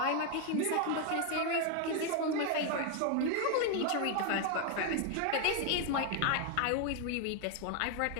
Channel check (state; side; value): different; both; correlation 0.01